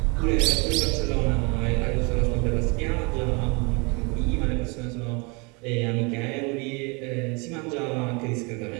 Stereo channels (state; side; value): quieter; left; 30.3 dB